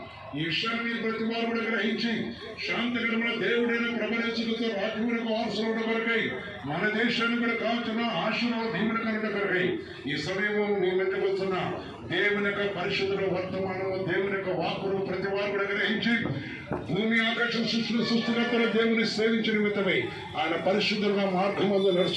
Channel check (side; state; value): both; identical; correlation 1.00